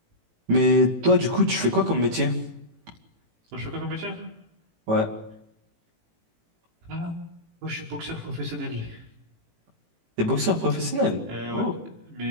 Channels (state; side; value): late; left; 18 ms